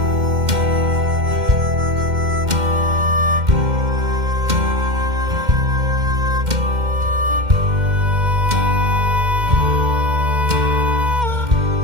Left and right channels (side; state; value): left; late; 2.1 ms